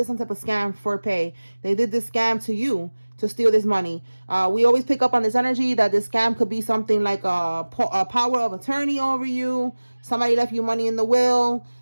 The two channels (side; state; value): both; inverted; correlation -1.00